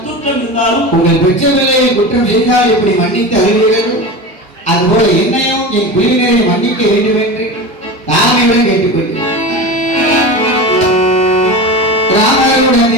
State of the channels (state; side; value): normal; both; correlation 0.27